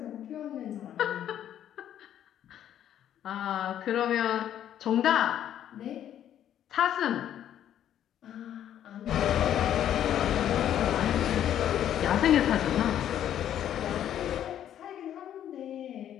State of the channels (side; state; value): right; quieter; 10.7 dB